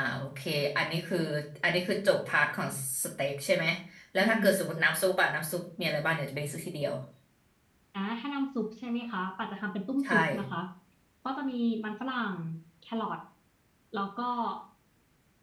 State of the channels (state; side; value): identical; both; correlation 1.00